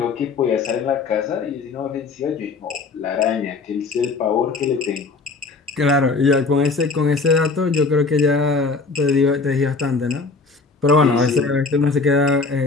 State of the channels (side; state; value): right; quieter; 4.1 dB